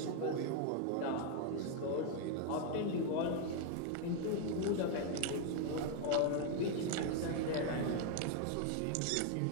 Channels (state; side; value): different; both; correlation 0.00